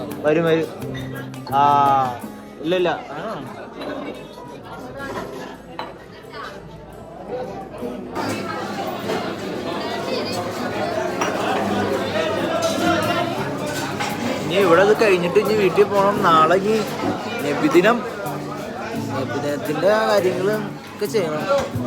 വരും വരും. ആ ഇല്ല. ഇനി ഇവിടെ അത് കഴിഞ്ഞിട്ട് ഇനി വീട്ടിൽ പോകണം. നാളെ ഇനി നബിദിനത്തിന്റെ കാര്യങ്ങളും ഒക്കെ ചെയ്യണം.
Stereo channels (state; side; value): identical; both; correlation 1.00